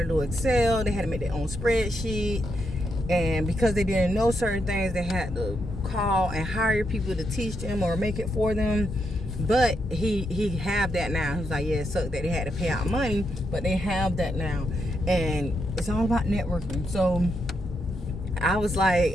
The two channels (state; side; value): normal; both; correlation 0.81